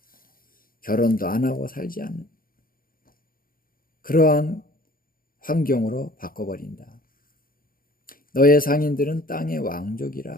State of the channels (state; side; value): late; right; 0.42 ms